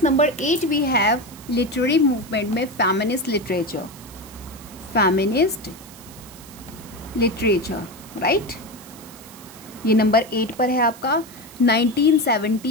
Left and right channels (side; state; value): right; noise; hiss, 19 dB below the sound